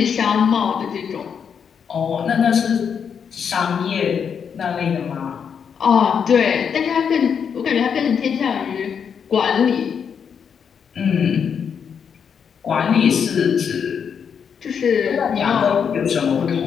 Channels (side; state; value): right; quieter; 7.1 dB